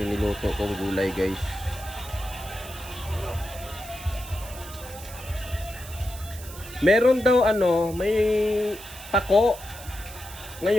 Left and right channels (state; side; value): noise; right; hiss, 15 dB below the sound